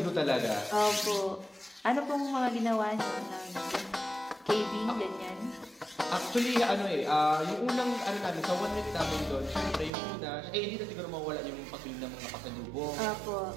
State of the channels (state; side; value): drops out; left; at 9.9 s